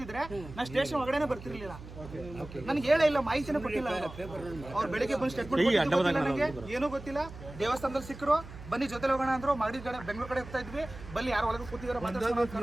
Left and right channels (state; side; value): noise; right; hum, 14 dB below the sound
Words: ನಾ ಸ್ಟೇಷನ್ ಒಳಗಡೆ ಬರ್ತಿರ್ಲಿಲ್ಲ. ನನ್ಗೆ ಹೇಳೇ ಇಲ್ಲ, ಮಾಹಿತಿನೇ ಕೊಟ್ಟಿಲ್ಲ ಅವ್ರು. ಬೆಳಿಗ್ಗೆ ಬಂದು ಸ್ಟೇಟ್ಮೆಂಟ್ ನನಗೆ ಏನೂ ಗೊತ್ತಿಲ್ಲ. ದೇವಸ್ಥಾನದಲ್ಲಿ ಸಿಕ್ಕರು, ಬನ್ನಿ ಜೊತೆ ಹೋಗೋಣ ಅಂದ್ರು. ಮಾಡಿ ಕಡೆ ಬೆಂಗಳೂರು ಕಡೆ ಹೋಗ್ತಾ ಇದ್ವಿ. ಬಲ್ಲಿ ಯಾರು ಒಳಗೆ ಕೂತಿದಾರ